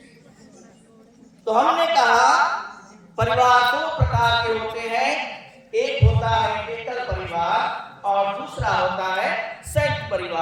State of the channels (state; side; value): identical; both; correlation 1.00